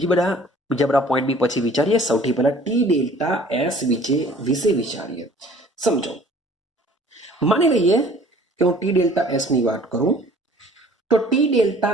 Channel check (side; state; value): both; normal; correlation 0.51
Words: બધા પોઈન્ટ બી પછી વિચારીએ. સૌથી પહેલા ટી ડેલ્ટા એસ વિશે વિચારીએ. સમજો, માની લઈએ કે હું ટી ડેલ્ટા એસ ની વાત કરું તો ટી